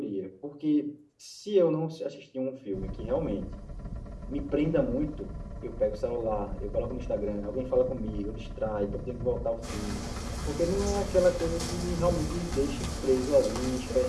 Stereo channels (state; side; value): identical; both; correlation 1.00